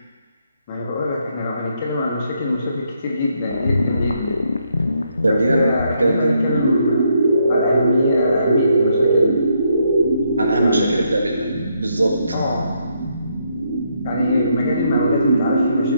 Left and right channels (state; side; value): inverted; both; correlation -0.75